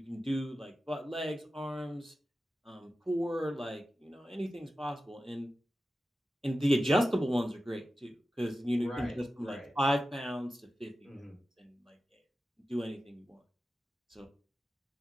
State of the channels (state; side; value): normal; both; correlation 0.93